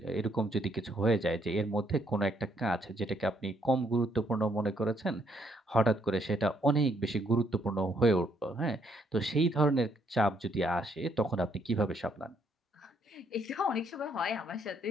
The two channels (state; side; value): normal; both; correlation 0.70